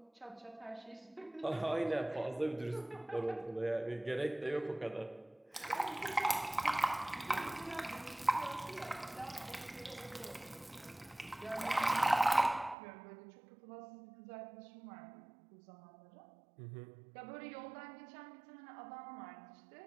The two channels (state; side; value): drops out; left; at 12.8 s